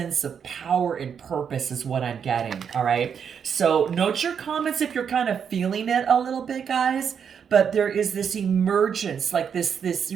of power and purpose is what I'm getting. All right. So note your comments if you're kind of feeling it a little bit, guys. But there is this emergence, like this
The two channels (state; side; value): quieter; left; 7.3 dB